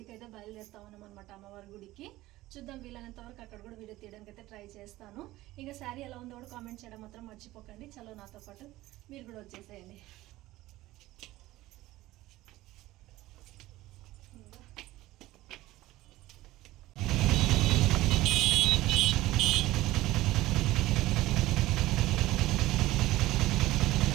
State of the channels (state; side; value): quieter; left; 17.1 dB